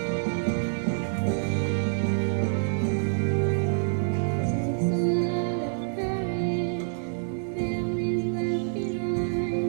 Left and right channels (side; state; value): left; silent; digital silence